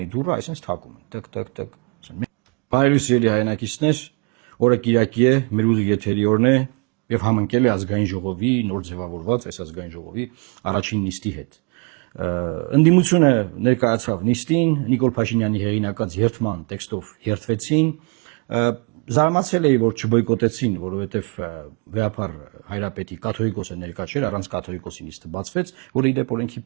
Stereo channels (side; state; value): left; quieter; 33.6 dB